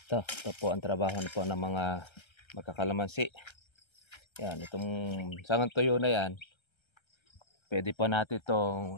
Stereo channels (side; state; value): right; late; 1.3 ms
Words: ito po ang trabaho po ng mga magkakalamansi. Yan, itong sangang tuyo na yan, pwede po natin